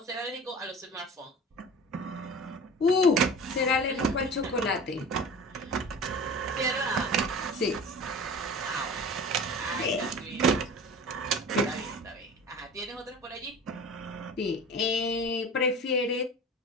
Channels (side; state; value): both; normal; correlation 0.38